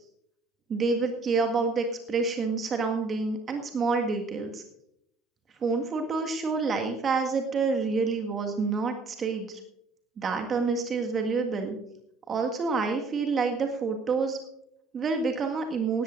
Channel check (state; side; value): quieter; left; 4.0 dB